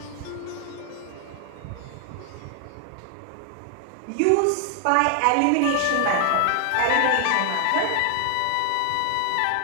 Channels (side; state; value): both; different; correlation 0.00